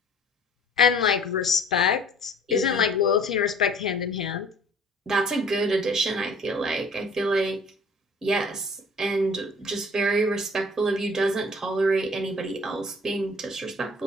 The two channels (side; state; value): both; normal; correlation 0.50